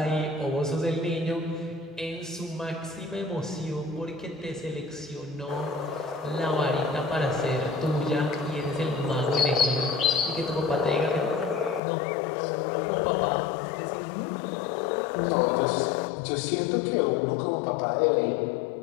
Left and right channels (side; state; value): right; drops out; at 11.8 s